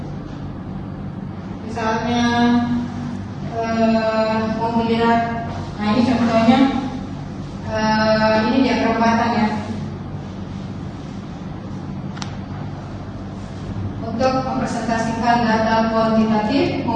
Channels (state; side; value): identical; both; correlation 1.00